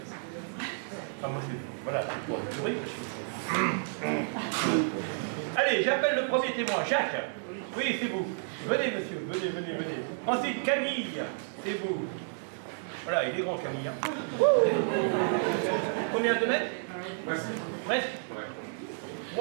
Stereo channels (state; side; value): silent; left; digital silence